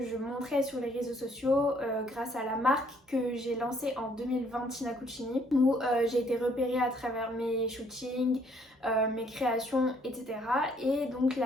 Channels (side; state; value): both; normal; correlation 0.65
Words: je montrais sur les réseaux sociaux, grâce à la marque que j'ai lancée en 2020, Tina Cucini, où j'ai été repérée à travers mes shootings, mes créations, etc. Et donc